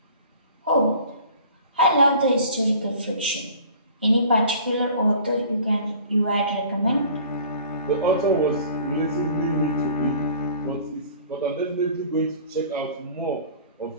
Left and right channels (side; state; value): both; inverted; correlation -0.47